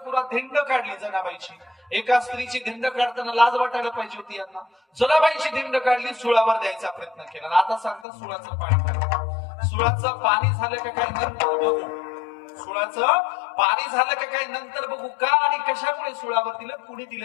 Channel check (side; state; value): right; drops out; at 8.1 s